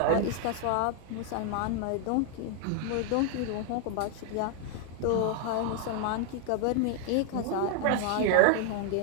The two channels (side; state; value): both; different; correlation 0.00